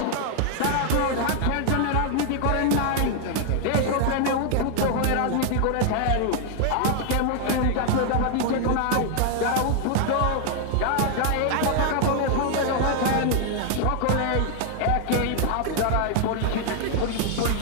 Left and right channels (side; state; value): both; different; correlation 0.00